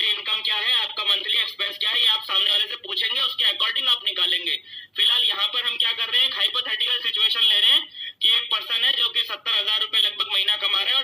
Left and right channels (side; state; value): both; normal; correlation 0.90